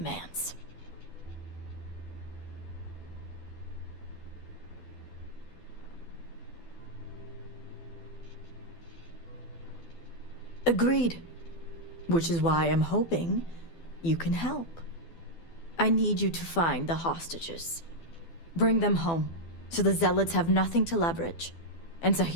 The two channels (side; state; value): right; late; 12 ms